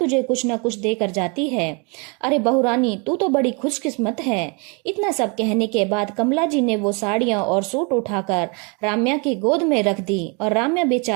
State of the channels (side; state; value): left; quieter; 32.5 dB